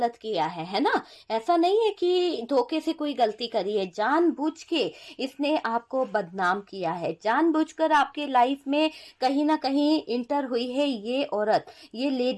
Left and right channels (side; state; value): both; identical; correlation 1.00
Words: किया है ना। ऐसा नहीं है कि धोखे से कोई गलती करी है, जानबूझ के इसने आपको बदनाम किया है, जानबूझकर आपके लाइफ में कहीं ना कहीं इंटर हुई है ये औरत, ये